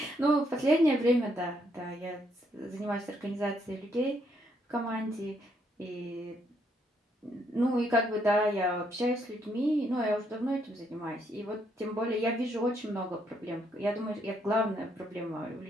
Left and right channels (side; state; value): both; normal; correlation 0.73